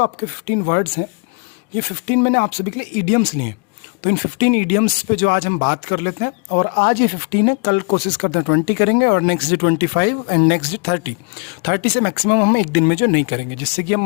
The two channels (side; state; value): right; quieter; 33.5 dB